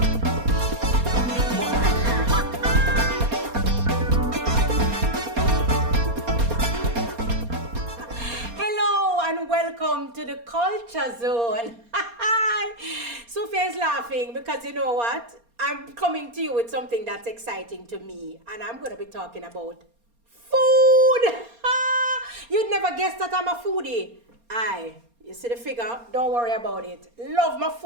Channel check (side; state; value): left; late; 4.3 ms